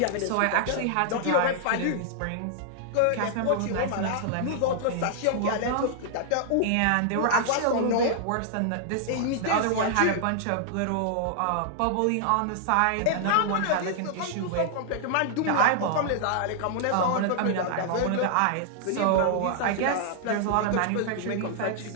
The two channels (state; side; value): different; both; correlation -0.01